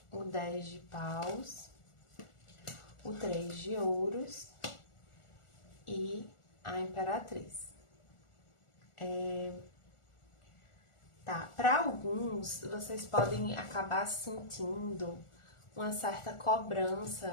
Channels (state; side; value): late; right; 1.4 ms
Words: o 10 de paus, o 3 de ouros e a imperatriz. Tá, para alguns, vocês podem acabar sentindo uma certa